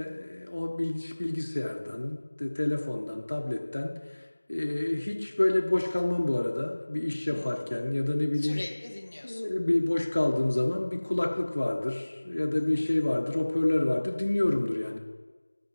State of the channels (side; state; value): both; inverted; correlation -1.00